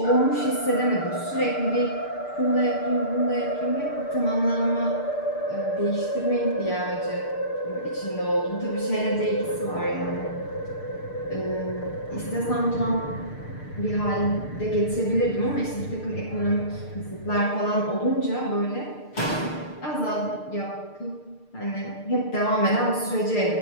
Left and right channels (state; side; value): late; right; 6.6 ms